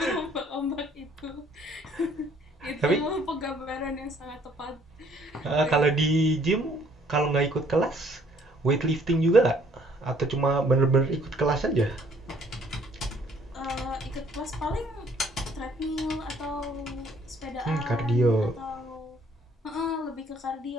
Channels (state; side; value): normal; both; correlation 0.61